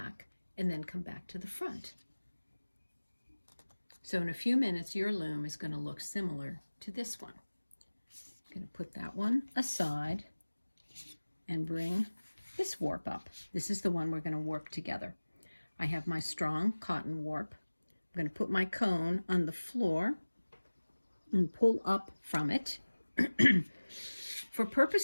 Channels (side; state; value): both; inverted; correlation -1.00